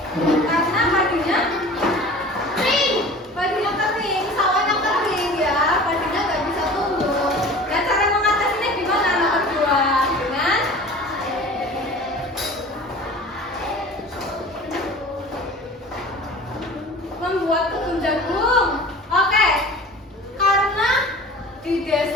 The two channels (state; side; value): normal; both; correlation 0.40